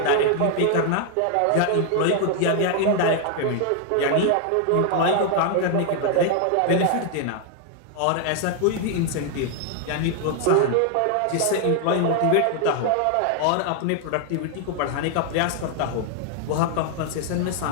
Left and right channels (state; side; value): different; both; correlation 0.00